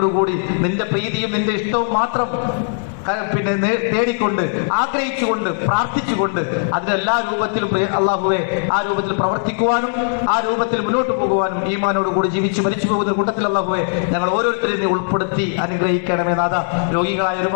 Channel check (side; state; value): right; silent; digital silence